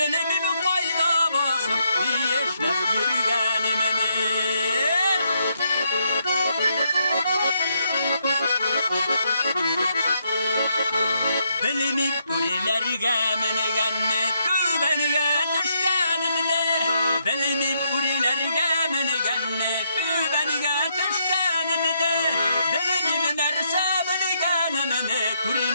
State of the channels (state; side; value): inverted; both; correlation -0.76